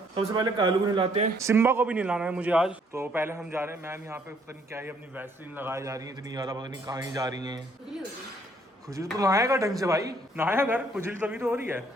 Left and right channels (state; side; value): normal; both; correlation 0.65